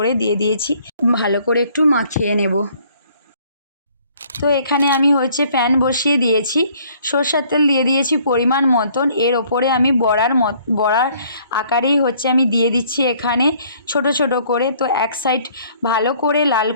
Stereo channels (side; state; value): both; inverted; correlation -0.60